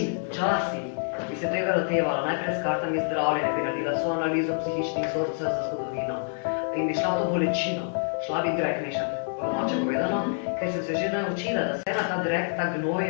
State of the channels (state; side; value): silent; right; digital silence